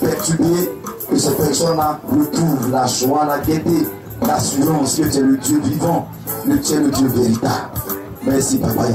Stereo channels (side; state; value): both; identical; correlation 1.00